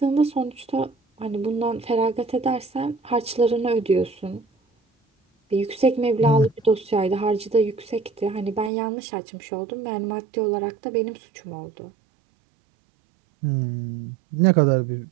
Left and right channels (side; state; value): left; drops out; at 8.7 s